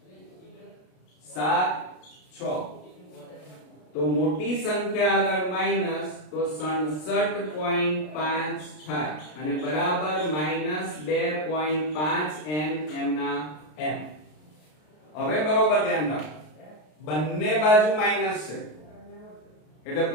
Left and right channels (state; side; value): late; right; 33 ms